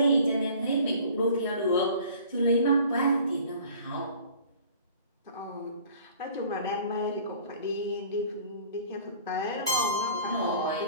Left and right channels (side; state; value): both; inverted; correlation -0.49